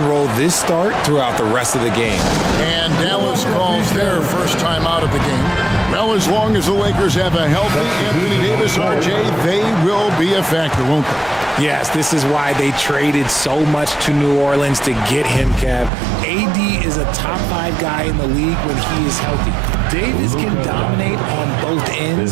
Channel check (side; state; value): left; drops out; at 15.9 s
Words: roll this start throughout the rest of the game. And Dallas calls their first time out of the game. Well, as long as the Lakers have a healthy Anthony Davis, RJ, they will be a factor, won't they? Yes, this is why they traded so much to New Orleans to get him, Kev. AD is a top 5 guy in the league when he is healthy. Davis can dominate on both